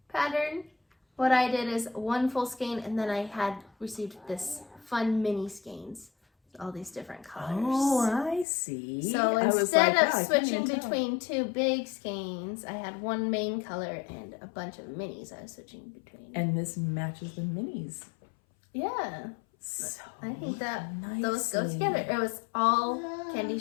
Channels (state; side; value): drops out; right; at 8.5 s